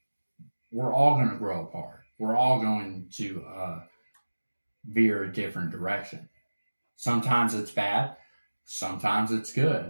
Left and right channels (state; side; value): inverted; both; correlation -1.00